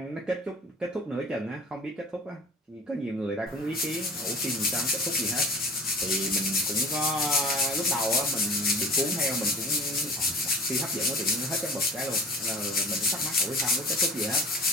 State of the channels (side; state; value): both; normal; correlation 0.42